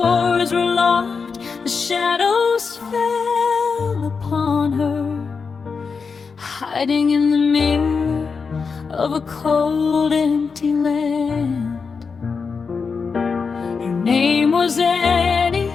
were locked, the shadows fell upon her, hiding in the mirror of a cold, empty land. Her name was Annie,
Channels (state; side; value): quieter; right; 5.2 dB